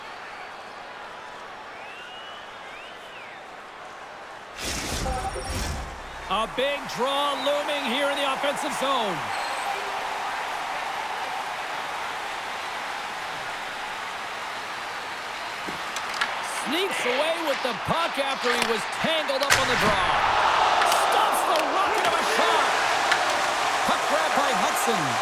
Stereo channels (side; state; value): both; identical; correlation 1.00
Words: A big draw looming here in the offensive zone. Sneaks away with the puck after he was tangled up on the draw. Stops the rocket of a shot. Puck grab by Hudson.